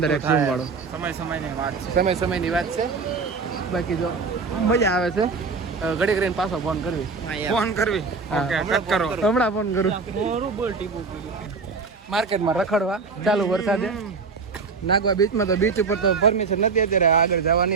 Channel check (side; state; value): left; quieter; 4.7 dB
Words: ઝૂમ વાળો સમયની વાત છે બાકી જો મજા આવે છે ઘડી કરીને પાછો ફોન કરવી ઓકે કટ કરો હમણાં ફોન કરું માર્કેટમાં રખડવા ચાલુ વરસાદે નાગવા બીચમાં તો બીચ ઉપર તો પરમિશન નથી અત્યારે આગળ